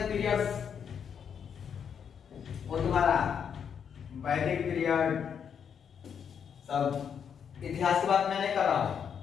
पीरियड्स वो तुम्हारा वैदिक पीरियड, सब इतिहास की बात मैं नहीं कर रहा हूं।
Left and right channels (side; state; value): right; quieter; 7.6 dB